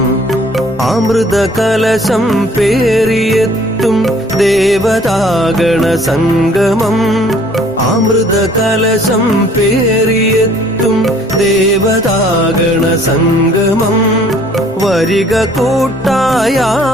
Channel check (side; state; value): both; normal; correlation 0.57